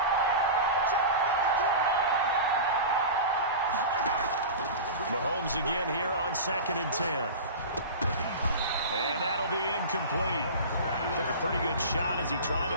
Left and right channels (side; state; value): both; inverted; correlation -0.30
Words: Mahomes again here on 2nd and 10. And that'll be incomplete. Took a pretty good shot as he tried to